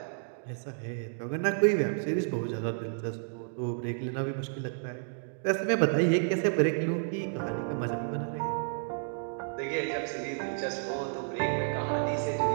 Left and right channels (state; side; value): silent; left; digital silence